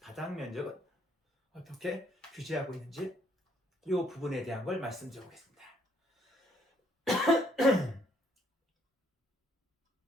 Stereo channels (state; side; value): normal; both; correlation 0.68